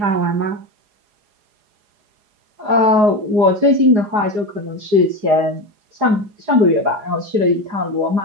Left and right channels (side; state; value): left; late; 4.8 ms